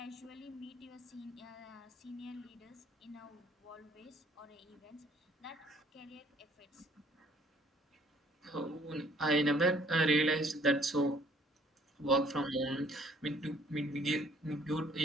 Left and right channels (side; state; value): both; normal; correlation 0.60